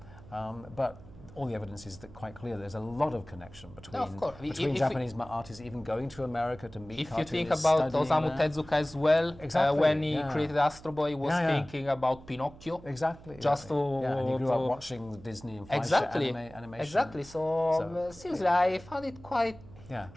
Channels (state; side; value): noise; right; hum, 19 dB below the sound